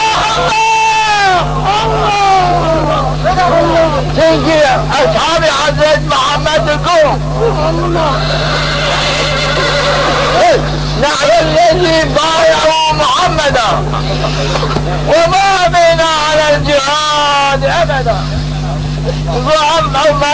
تنجي أصحاب حضرت محمد القوم نحن الذي بايعوا محمدا وما بنا على الجهاد أبدا وعم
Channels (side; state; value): both; identical; correlation 1.00